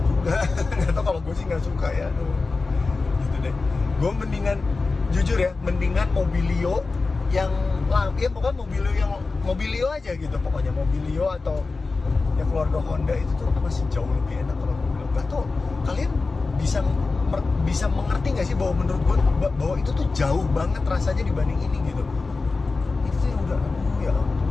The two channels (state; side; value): quieter; right; 3.9 dB